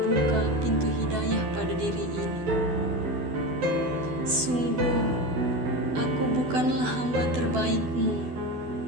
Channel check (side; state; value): left; late; 12 ms